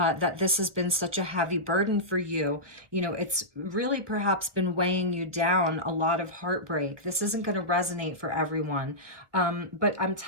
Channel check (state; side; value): late; left; 1.3 ms